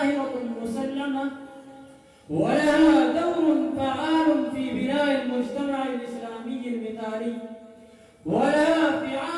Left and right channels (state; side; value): identical; both; correlation 1.00